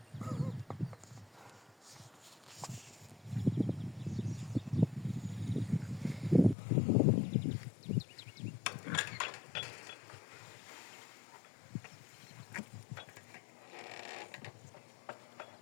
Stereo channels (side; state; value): right; drops out; at 6.6 s